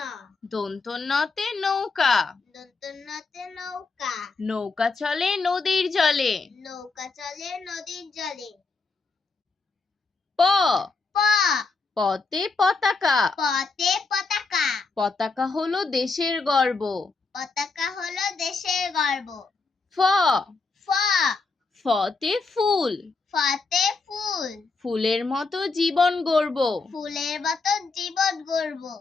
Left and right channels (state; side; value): quieter; right; 4.2 dB